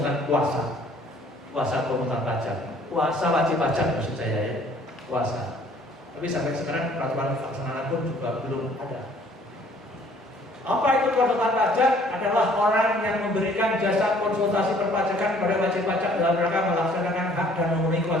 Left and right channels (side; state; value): both; normal; correlation 0.57